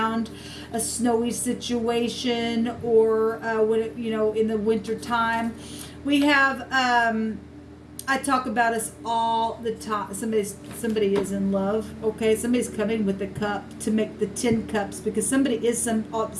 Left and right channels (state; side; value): identical; both; correlation 1.00